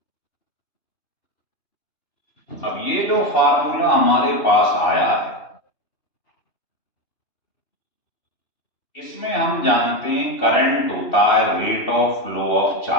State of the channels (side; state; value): right; late; 2.9 ms